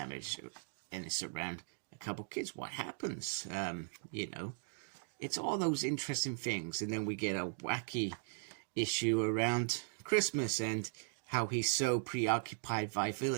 and it's around a couple kids. What happens? You know, it's all those interesting things. And then we get a wacky issue around Christmas and how he's so preoccupied by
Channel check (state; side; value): silent; left; digital silence